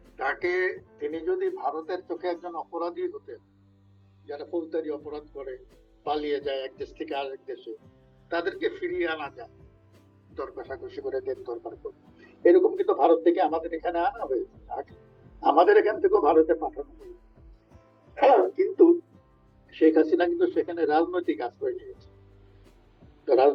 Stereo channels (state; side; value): identical; both; correlation 1.00